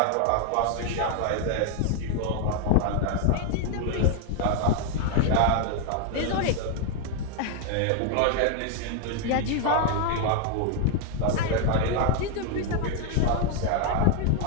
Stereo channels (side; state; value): both; different; correlation 0.00